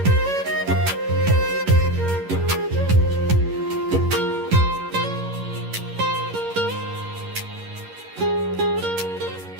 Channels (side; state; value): left; late; 11 ms